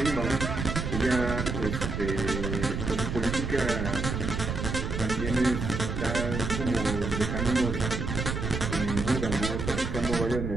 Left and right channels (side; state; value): right; noise; rumble, 3 dB below the sound